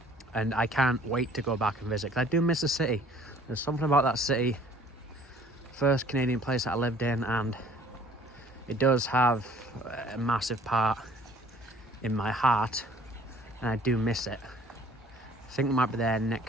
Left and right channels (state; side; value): normal; both; correlation 0.54